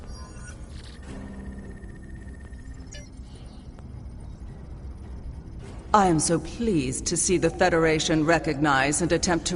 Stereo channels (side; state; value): both; identical; correlation 1.00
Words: I am so pleased to see the Federation recognize and attempt